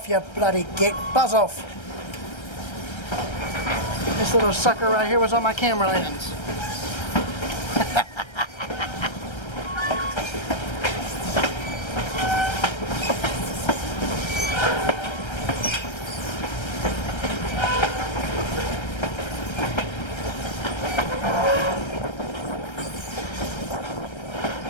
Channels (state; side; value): late; right; 1.3 ms